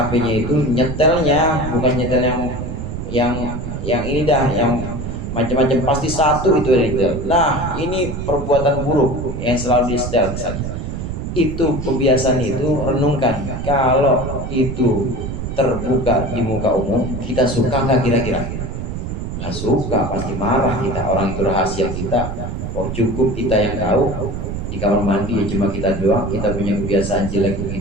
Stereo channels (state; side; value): noise; right; rumble, 5 dB below the sound